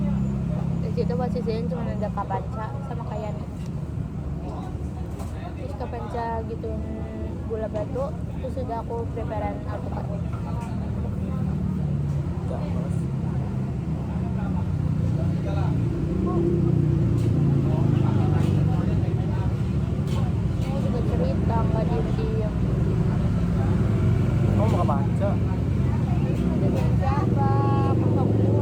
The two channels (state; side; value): identical; both; correlation 1.00